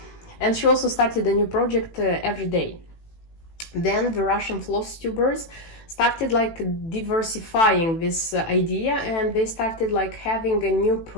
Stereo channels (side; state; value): right; late; 18 ms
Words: And she also started a new project every day. Then the Russian FlossTubers started like diversifying this idea, and they started like having a new